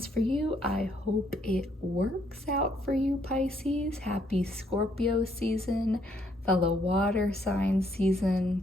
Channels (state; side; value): normal; both; correlation 0.70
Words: for you, I hope it works out for you, Pisces. Happy Scorpio season, fellow water sign